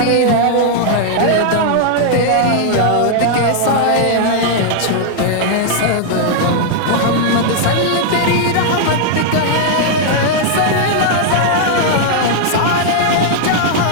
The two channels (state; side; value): different; both; correlation -0.01